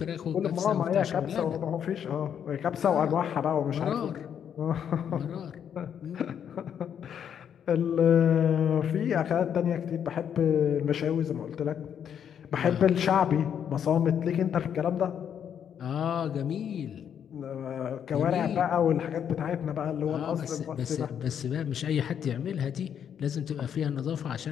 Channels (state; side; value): quieter; right; 8.6 dB